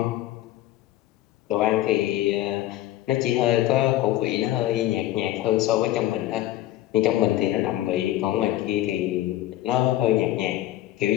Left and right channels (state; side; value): quieter; right; 14.6 dB